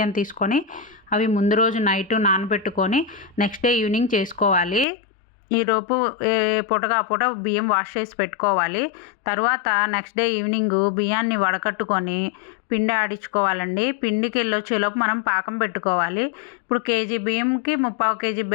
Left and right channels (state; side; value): drops out; right; at 4.9 s